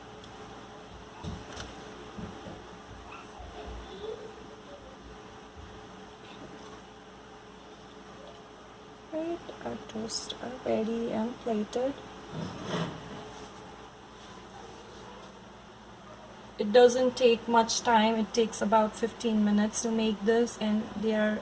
Right, our toasts are ready and plated. It doesn't take much time. It takes about 15 minutes to make this, and they are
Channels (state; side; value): identical; both; correlation 1.00